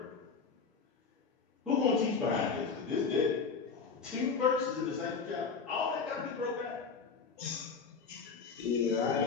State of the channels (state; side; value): quieter; right; 5.2 dB